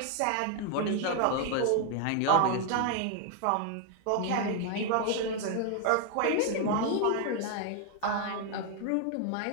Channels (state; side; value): different; both; correlation 0.00